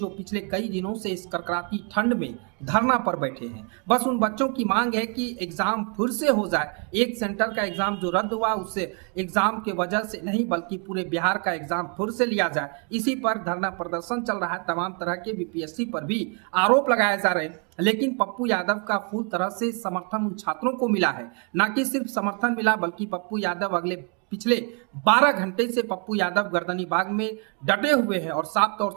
पिछले कई दिनों से इस कड़कड़ाती ठंड में धरना पर बैठे हैं। बस उन बच्चों की मांग है कि एग्जाम फिर से हो जाए। एक सेंटर का एग्जाम जो रद्द हुआ उससे एग्जाम के वजह से नहीं बल्कि पूरे बिहार का एग्जाम फिर से लिया जाए, इसी पर धरना प्रदर्शन चल रहा है। तमाम तरह के बीपीएससी पर भी आरोप लगाए जा रहे हैं, लेकिन पप्पू यादव का फुल तरह से समर्थन उन छात्रों को मिला है। न कि सिर्फ समर्थन मिला बल्कि पप्पू यादव पिछले 12 घंटे से पप्पू यादव गर्दनी बाग में डटे हुए हैं और साफ तौर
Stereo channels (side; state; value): left; quieter; 36.3 dB